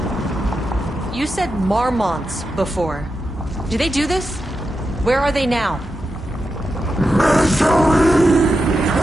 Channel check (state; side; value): normal; both; correlation 0.88